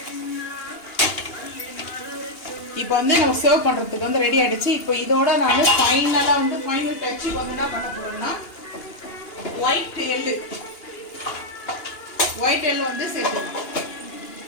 இப்போ வந்து நம்ம சர்வ் பண்ணுறதுக்கு வந்து ரெடி ஆகிடுச்சு. இப்போ இதோட நான் ஃபைனலாக வந்து ஃபைனல் டச்சுக்கு வந்து என்ன பண்ண போகிறேன்னா ஒயிட் எள்ளு வந்து சேர்த்துக்கலாம்.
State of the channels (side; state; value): right; late; 2.8 ms